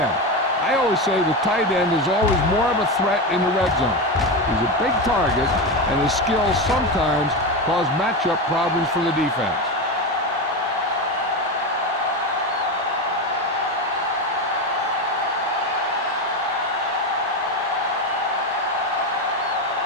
I always say the tight end is always more of a threat in the red zone. He's a big target, and his skills sometimes cause matchup problems for the defense.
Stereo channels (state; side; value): normal; both; correlation 0.17